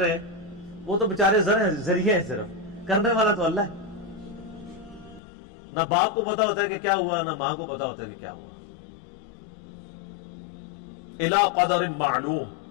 وہ تو بیچارے ذریعے ہیں، صرف کرنے والا تو اللہ ہے۔ نہ باپ کو پتا ہوتا ہے کہ کیا ہوا، نہ ماں کو پتا ہوتا ہے کہ کیا ہوا۔ الی قدر معلوم،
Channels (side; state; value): right; drops out; at 5.2 s